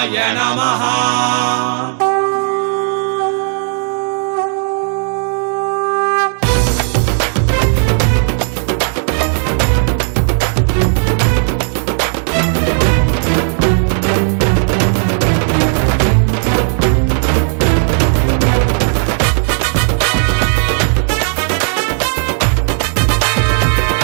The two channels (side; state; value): left; silent; 57 dB below the other